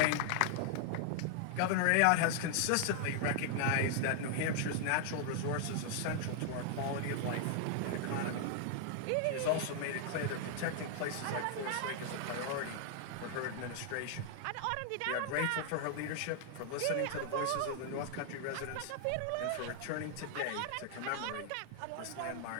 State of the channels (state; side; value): different; both; correlation 0.00